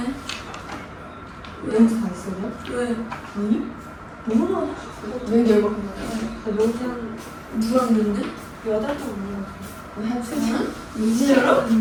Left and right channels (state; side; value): identical; both; correlation 1.00